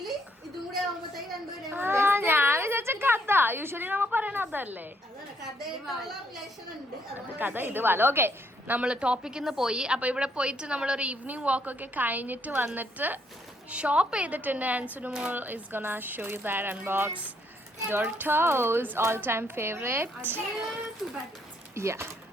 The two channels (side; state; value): both; normal; correlation 0.71